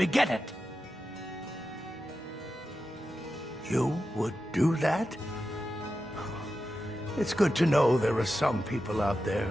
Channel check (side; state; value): both; normal; correlation 0.91